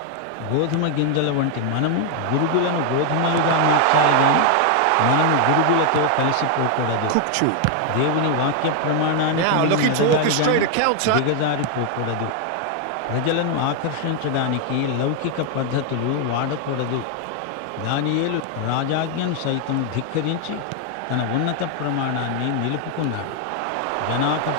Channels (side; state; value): both; different; correlation 0.00